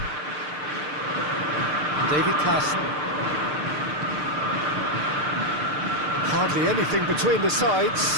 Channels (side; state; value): left; late; 6.7 ms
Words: David Klassen. Hardly anything between the